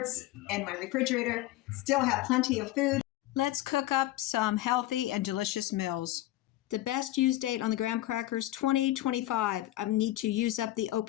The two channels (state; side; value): quieter; right; 15.6 dB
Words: and my refrigerator still have plenty of food. Let's cook up some healthy and delicious meals. The best use date on the graham crackers, 2025. I need to use up the